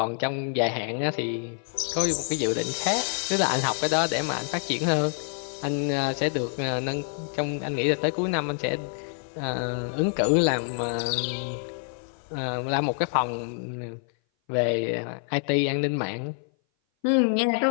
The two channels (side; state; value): right; silent; 58 dB below the other